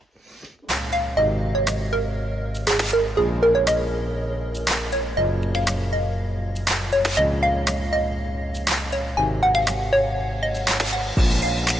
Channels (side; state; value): both; normal; correlation 0.84